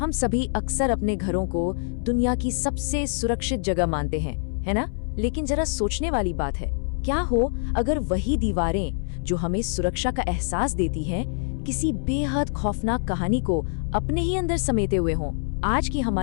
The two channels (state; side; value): silent; right; 60 dB below the other